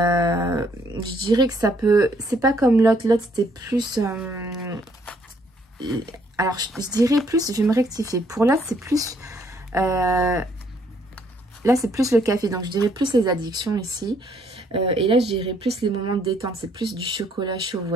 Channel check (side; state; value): both; normal; correlation 0.68